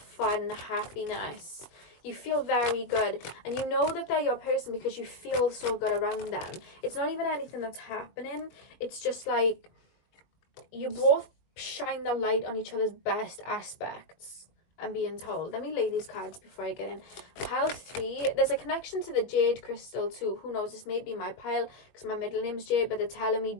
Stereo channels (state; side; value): late; right; 21 ms